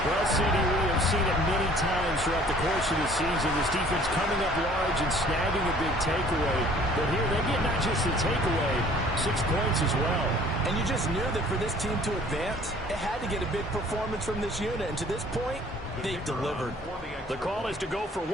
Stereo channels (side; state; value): both; normal; correlation 0.54